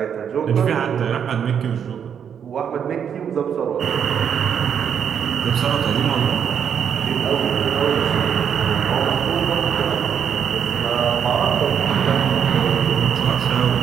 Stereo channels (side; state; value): left; quieter; 8.0 dB